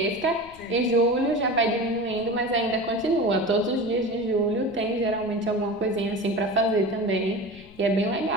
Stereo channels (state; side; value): noise; left; rumble, 22 dB below the sound